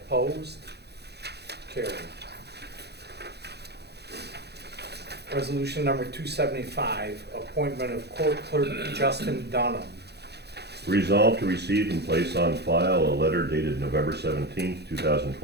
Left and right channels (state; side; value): late; left; 0.48 ms